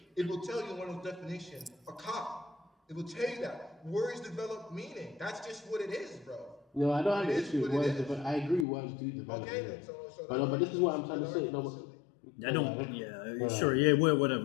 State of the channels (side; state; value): right; drops out; at 8.7 s